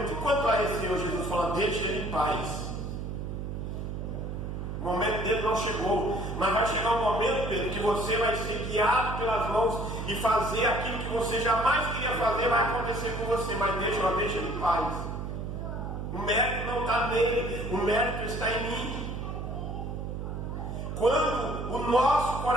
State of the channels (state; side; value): noise; right; hum, 5 dB below the sound